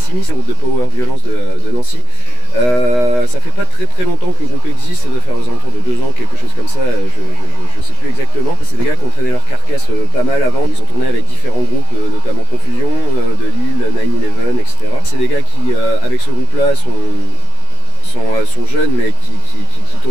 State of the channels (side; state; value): right; late; 16 ms